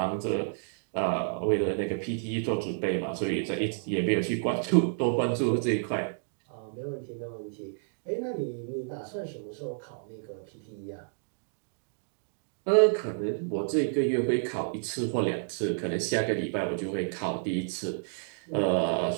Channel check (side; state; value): left; silent; digital silence